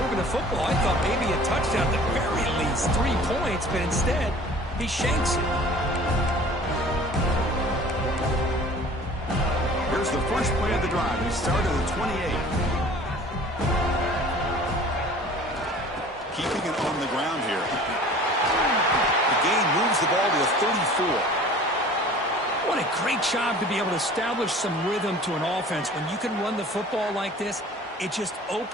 moving the football, I thought maybe a touchdown, at the very least 3 points, but instead, he shanks it. Here's the first play of the drive. He started at 28. Keeping it on the ground here. The gain moves the ball to the 34. What a great job to be able to establish some rhythm to an offense. When you can run the football like this, it just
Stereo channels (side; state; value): both; normal; correlation 0.46